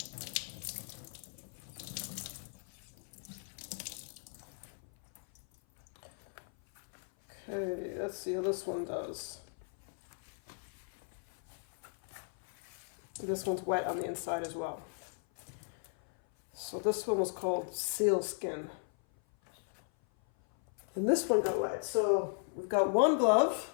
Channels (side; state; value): right; silent; 53 dB below the other